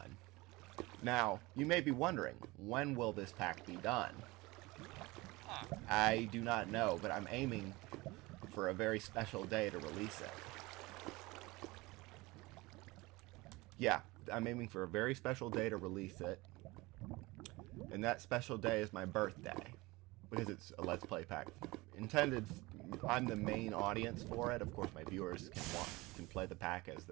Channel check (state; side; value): quieter; left; 22.2 dB